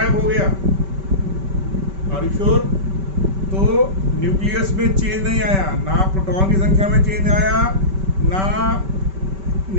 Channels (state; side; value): late; left; 5.2 ms